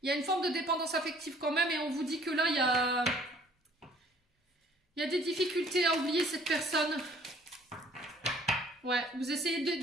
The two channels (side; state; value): both; normal; correlation 0.57